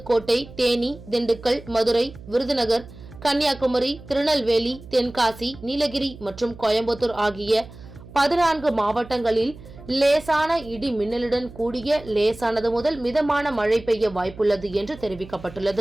தேனி, திண்டுக்கல், மதுரை, விருதுநகர், கன்னியாகுமரி, திருநெல்வேலி, தென்காசி, நீலகிரி மற்றும் கோயம்புத்தூர் ஆகிய 14 மாவட்டங்களில் லேசான இடி மின்னலுடன் கூடிய லேசானது முதல் மிதமான மழை பெய்ய வாய்ப்புள்ளது என்று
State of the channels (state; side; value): noise; right; hum, 18 dB below the sound